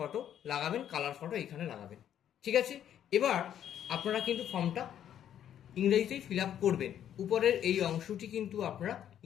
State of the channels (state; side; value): quieter; right; 10.2 dB